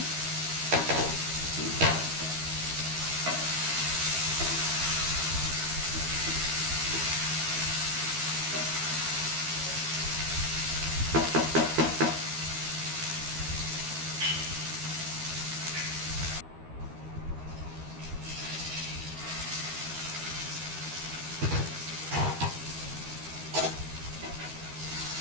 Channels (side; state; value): left; late; 13 ms